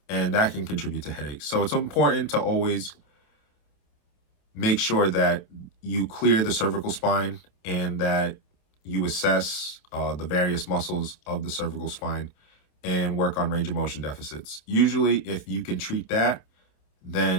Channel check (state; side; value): late; right; 27 ms